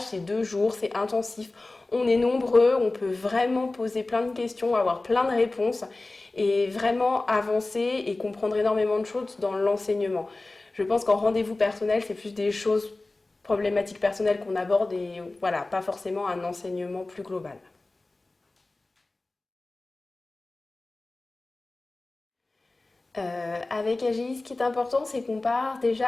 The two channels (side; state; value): right; quieter; 3.1 dB